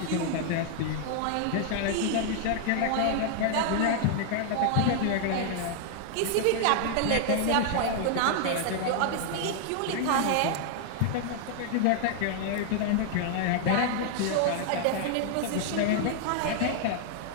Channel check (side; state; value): both; different; correlation 0.00